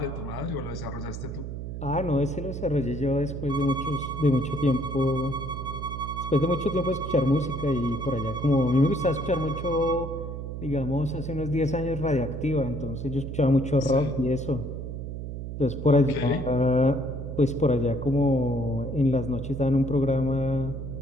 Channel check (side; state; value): right; noise; hum, 7 dB below the sound